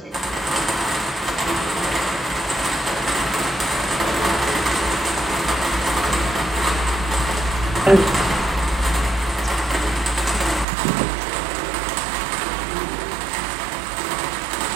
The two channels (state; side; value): drops out; left; at 10.7 s